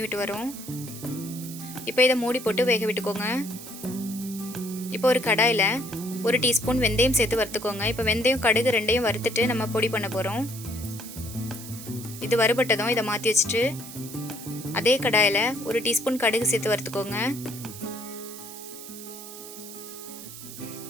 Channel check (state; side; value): noise; right; hiss, 13 dB below the sound